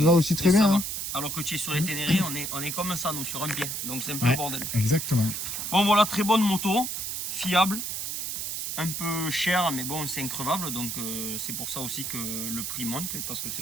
va aussi très et ça bien. va. Hein. Alors que tu es sur les Ténérés, on est comme ça, nous, sur un pied. Donc c'est un peu Ouais. le bordel. Exactement. Bon, voilà, très bonne moto, fiable, un peu cher, mais bon, c'est increvable. Donc c'est pour ça aussi que le prix monte, parce que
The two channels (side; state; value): right; noise; hiss, 3 dB below the sound